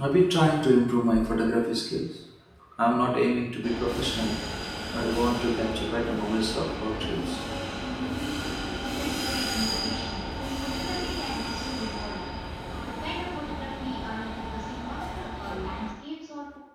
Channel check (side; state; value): both; identical; correlation 1.00